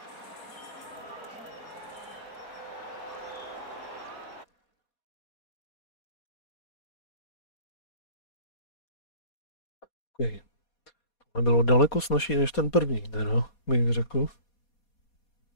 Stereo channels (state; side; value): late; right; 4.2 ms